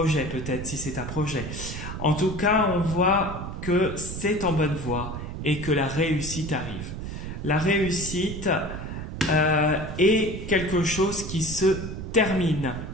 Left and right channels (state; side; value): noise; right; rumble, 7 dB below the sound